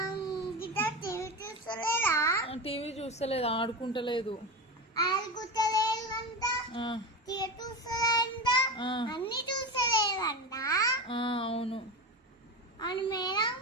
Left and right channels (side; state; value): both; normal; correlation 0.22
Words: టీవీ చూస్తలేదు, ఆడుకుంటలేదు. అన్ని చూస్తలేదంట. అవును మేడం.